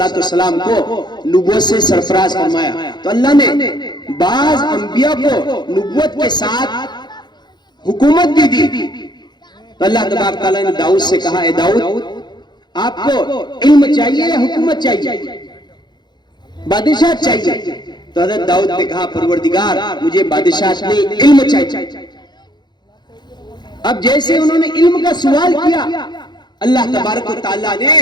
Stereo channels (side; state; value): right; late; 0.21 ms